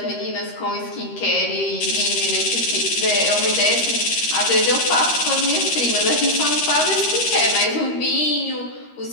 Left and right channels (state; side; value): late; right; 13 ms